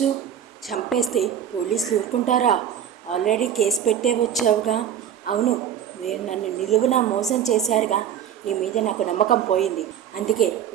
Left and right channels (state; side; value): quieter; left; 9.4 dB